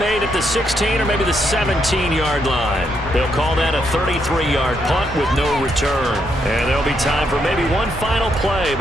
at the 16 or maybe the 17-yard line. They'll call that a 33-yard punt with no return. And there'll be time for maybe one final play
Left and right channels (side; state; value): both; normal; correlation 0.77